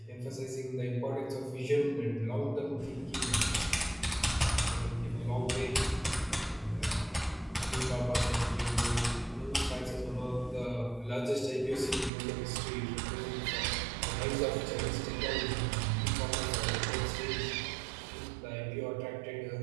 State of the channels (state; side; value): drops out; left; at 12.1 s